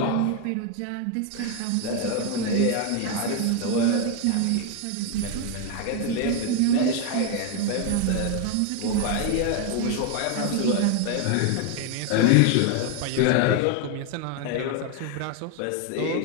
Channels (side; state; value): both; different; correlation 0.01